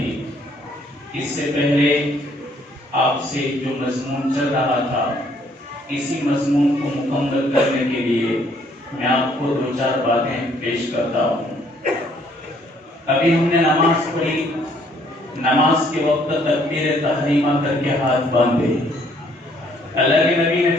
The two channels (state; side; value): normal; both; correlation 0.64